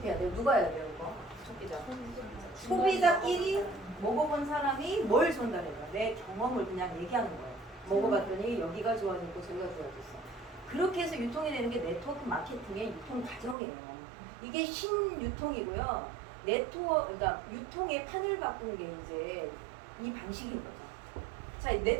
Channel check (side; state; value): left; drops out; at 13.6 s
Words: 해야 돼요? 누가 해야 돼요? 이거? 소비자. 소비자끼리 먹어본 사람이 뭘 전달해요? 내 경험을 그냥 얘기하는 거예요. 먹어봤더니 여기가 좋아졌고 저기가 좋아졌어. 그렇게 해서 유통이 되는 게 네트워크 마케팅의 유통 과정이에요. 이게 신유통이고요. 그러니까 유통의 판을 바꾼 게 이제 이 방식인 거죠. 자,